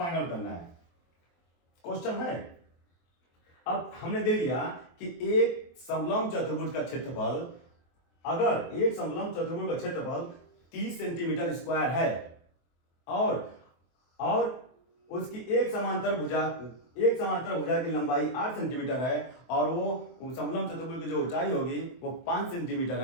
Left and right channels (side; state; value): right; late; 23 ms